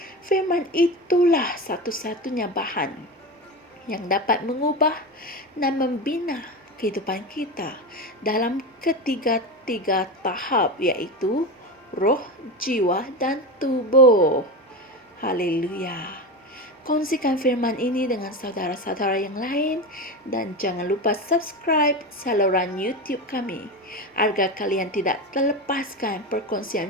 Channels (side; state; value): both; normal; correlation 0.22